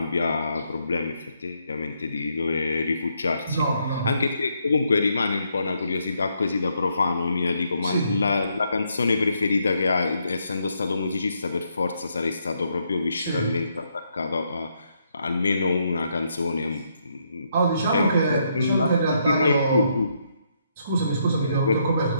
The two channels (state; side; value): inverted; both; correlation -0.76